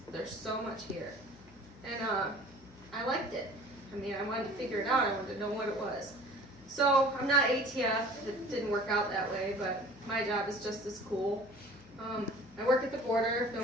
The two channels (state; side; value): noise; left; hum, 24 dB below the sound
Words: There's so much here." And I liked it. I wanted to figure it out. I wanted to know what it was. So I'm not ATF. It didn't work out that way, but my job is just as cool. I work at the border. If